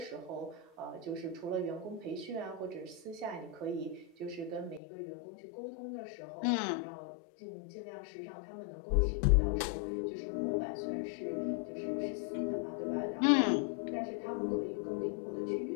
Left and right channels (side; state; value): right; drops out; at 4.8 s